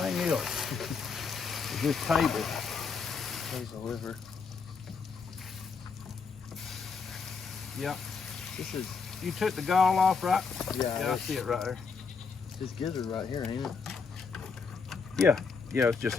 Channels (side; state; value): right; quieter; 5.2 dB